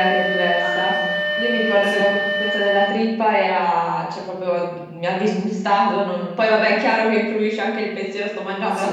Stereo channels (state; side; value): identical; both; correlation 1.00